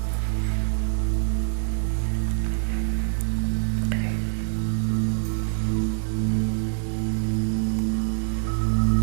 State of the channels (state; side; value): silent; left; digital silence